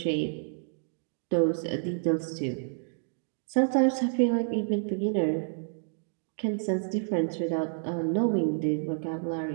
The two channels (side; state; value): left; silent; digital silence